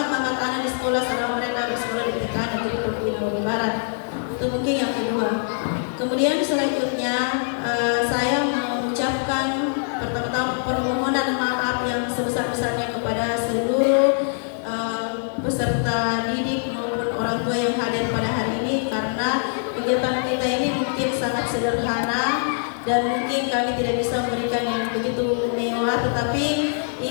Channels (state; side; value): silent; right; 57 dB below the other